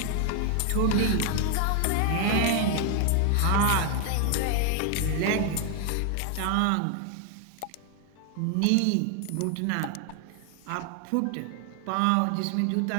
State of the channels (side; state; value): both; different; correlation 0.00